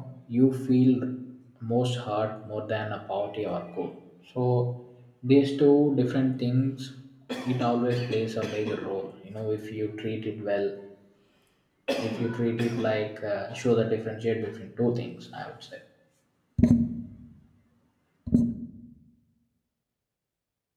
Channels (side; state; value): both; identical; correlation 1.00